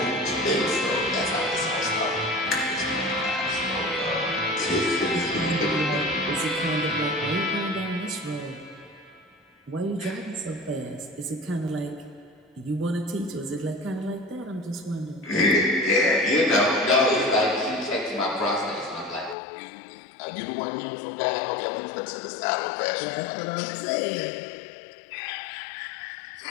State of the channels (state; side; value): drops out; right; at 19.4 s